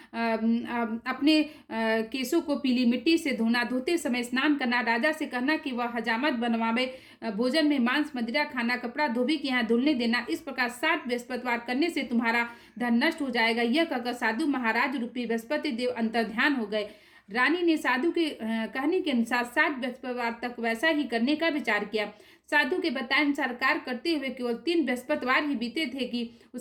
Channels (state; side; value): identical; both; correlation 1.00